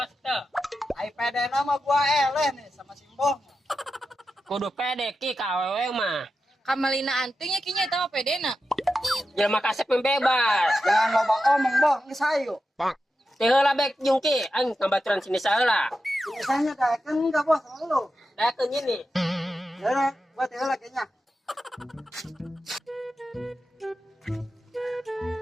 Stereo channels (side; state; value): both; normal; correlation 0.90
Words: teh. Ai pede nama gua eleh nih sama Simbo. Kudu pede ki ka awewe mah. Kamalina antingnya kinya eta mah pedena. Jangan kasep yang bebas. Jangan loba omong, Boh. Geus hayu. Teh heula bek jungki, aing tambaturan sini saheula. Misalnya daekeun enggak, Bos, sama lu. Dakeun ini. Ya udah, gua teh heula kayaknya.